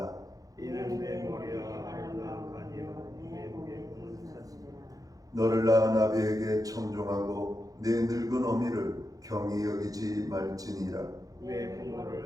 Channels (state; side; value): late; left; 0.17 ms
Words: 이는 내 머리와 아름다운 간이요 내 목의 푸른 샀으라. 너를 낳은 아비에게 청종하고 내 늙은 어미를 경히 여기지 말지니라. 내